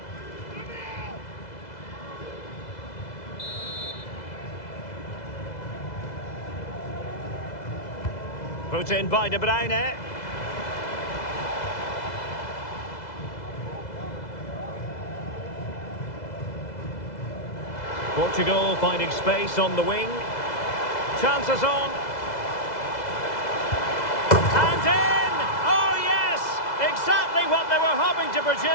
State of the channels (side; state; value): right; late; 2.0 ms